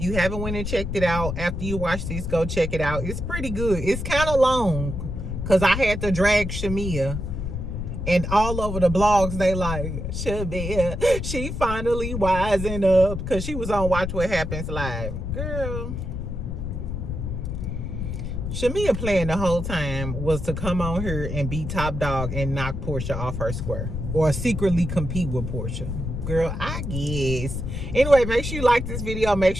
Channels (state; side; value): noise; left; rumble, 4 dB below the sound